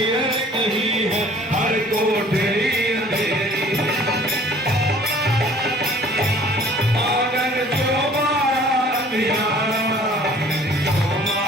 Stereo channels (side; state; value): both; normal; correlation 0.52